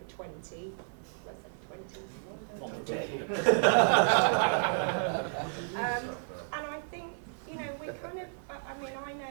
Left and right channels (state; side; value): silent; left; 56 dB below the other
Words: 20. Let's say 21. And I think, you know, we kind of, I mean, I